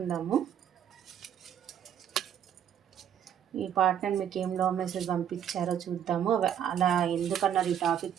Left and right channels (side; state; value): left; quieter; 9.3 dB